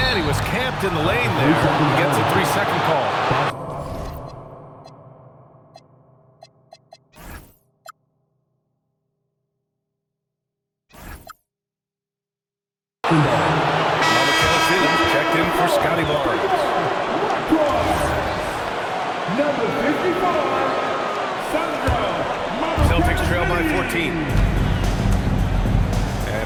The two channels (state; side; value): identical; both; correlation 1.00